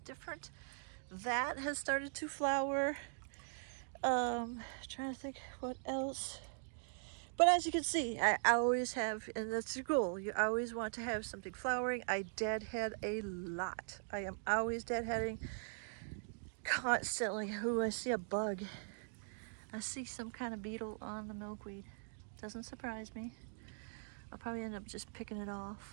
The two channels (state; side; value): silent; left; digital silence